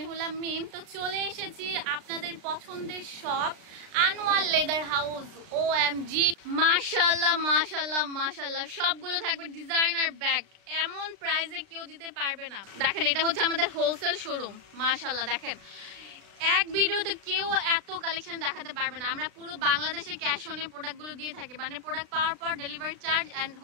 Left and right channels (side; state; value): left; late; 36 ms